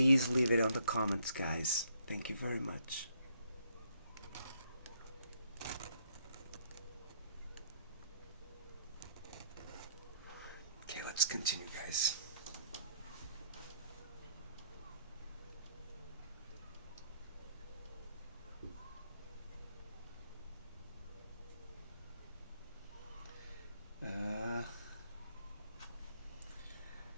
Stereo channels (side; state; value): both; inverted; correlation -0.69